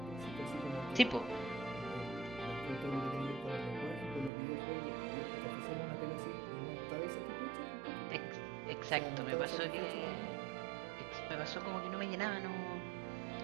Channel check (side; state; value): left; drops out; at 4.3 s